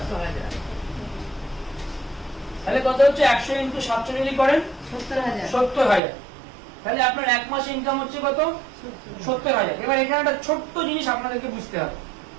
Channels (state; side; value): drops out; left; at 6.0 s